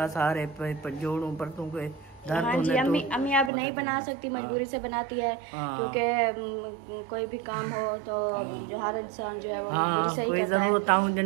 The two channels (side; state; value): left; drops out; at 3.5 s